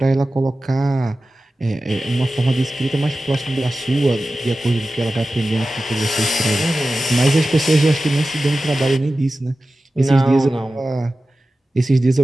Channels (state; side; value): normal; both; correlation 0.95